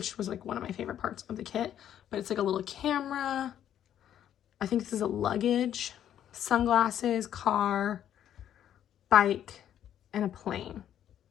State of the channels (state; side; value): quieter; right; 10.5 dB